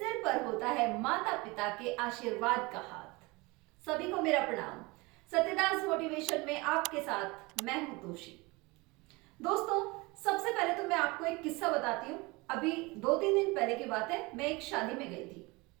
पर होता है माता पिता के आशीर्वाद का हाथ। सभी को मेरा प्रणाम। सत्यदास मोटिवेशन में आपके साथ मैं हूं तोशी। दोस्तों, सबसे पहले तो मैं आपको एक किस्सा बताती हूँ। अभी 2-3 दिन पहले की बात है, मैं एक शादी में गई थी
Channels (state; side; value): quieter; left; 24.6 dB